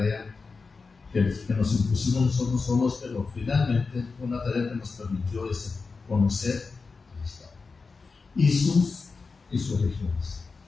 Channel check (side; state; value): right; quieter; 4.4 dB